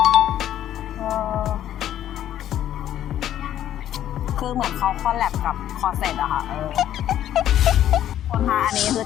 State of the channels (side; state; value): right; quieter; 11.5 dB